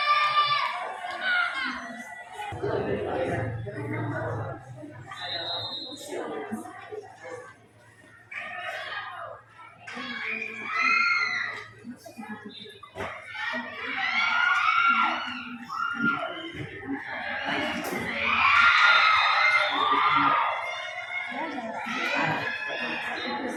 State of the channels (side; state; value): both; identical; correlation 1.00